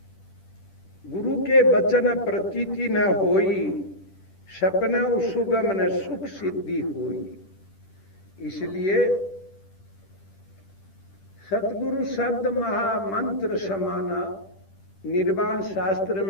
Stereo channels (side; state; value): right; late; 10 ms